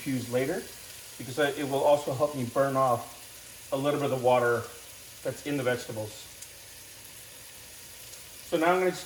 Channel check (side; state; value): both; identical; correlation 1.00